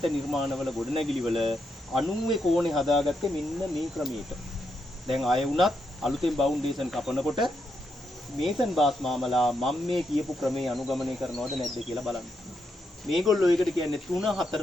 නිර්මාණවල ගොඩනැගිලිවල 90 කෝණේ හදාගත්තේ මෙන්න මේ ක්‍රමයට. දැන් ආයෙ වුණත් අලුතෙන් බවුන්ඩේෂන් කපනකොට මේසන් බාස් මාමලා මම මේ කියපු ක්‍රමේ අනුගමනය කරනවද නැද්ද කියලා බලන්න. මේගොල්ලෝ ඒකට කියන්නේ 3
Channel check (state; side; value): normal; both; correlation 0.81